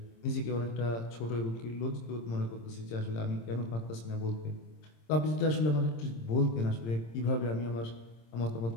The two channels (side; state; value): right; late; 26 ms